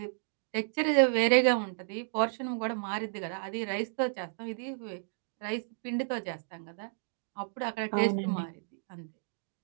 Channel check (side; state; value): left; silent; digital silence